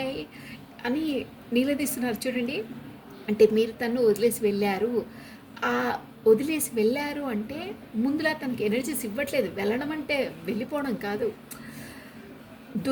అని నిలదీస్తున్నారు చూడండి. అంటే మీరు తను వదిలేసి వెళ్ళారు అంటే ముందులా తనకి ఎనర్జీస్ ఇవ్వట్లేదు. వెళ్ళడం అంటే వెళ్ళిపోవడం కాదు,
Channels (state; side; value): identical; both; correlation 1.00